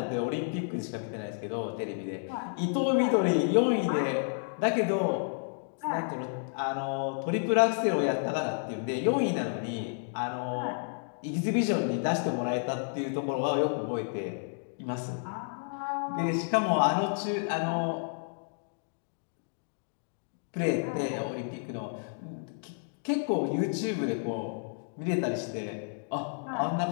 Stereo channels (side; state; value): right; silent; digital silence